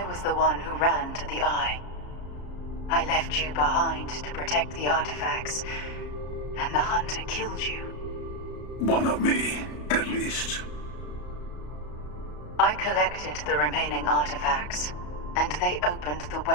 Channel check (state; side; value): late; right; 34 ms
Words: was the one who ran to the Eye. I left you behind to protect the artifacts, and the Hunter killed you. One of me, at least. I collected the remaining artifacts, and they opened the